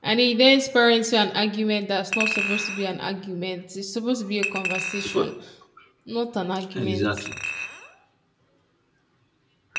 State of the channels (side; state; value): both; identical; correlation 1.00